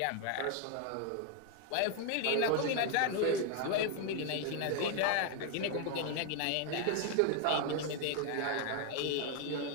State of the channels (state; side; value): different; both; correlation 0.01